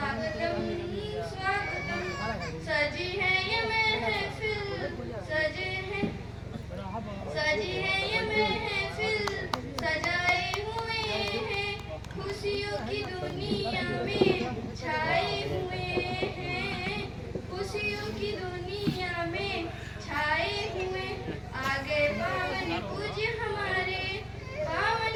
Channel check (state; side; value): identical; both; correlation 1.00